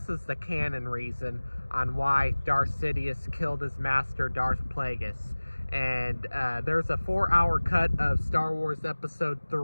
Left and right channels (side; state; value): both; inverted; correlation -1.00